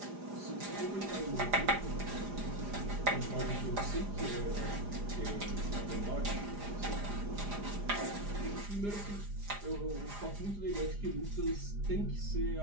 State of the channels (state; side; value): late; left; 4.9 ms